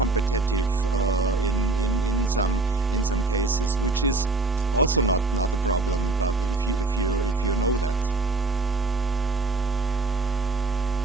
in some cases, which is also not a problem. But if you know that.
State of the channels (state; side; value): quieter; left; 3.2 dB